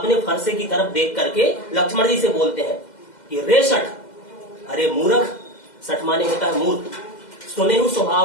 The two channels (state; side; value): late; right; 2.0 ms